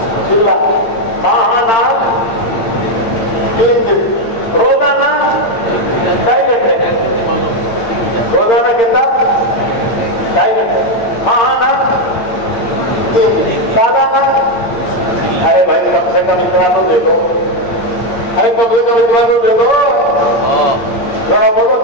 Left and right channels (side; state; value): right; late; 8.8 ms